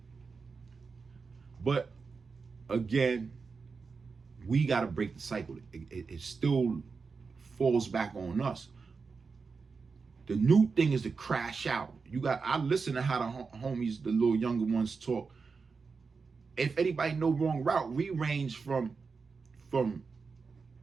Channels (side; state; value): left; quieter; 4.9 dB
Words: But again, we got to break the cycle. It still falls back on us. The new thing is to crash out. I listen to how the homies, the little younger ones talk. If anybody know Wrong Route, we range from